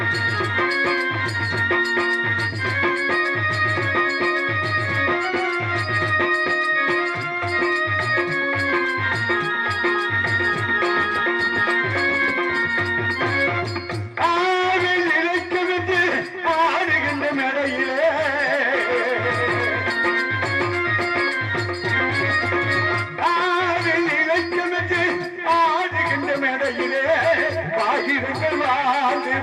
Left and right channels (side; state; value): both; identical; correlation 1.00